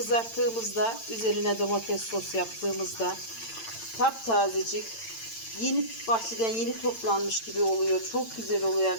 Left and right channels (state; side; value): late; right; 8.9 ms